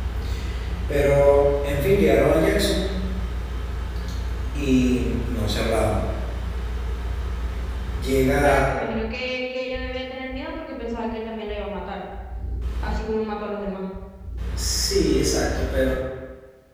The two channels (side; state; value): both; identical; correlation 1.00